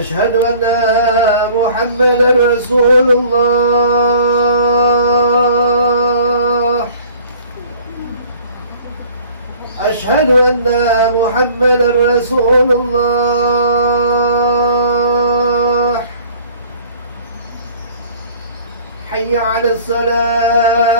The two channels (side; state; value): both; inverted; correlation -0.51